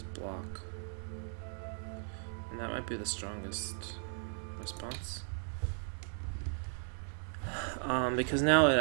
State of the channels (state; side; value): silent; left; 53 dB below the other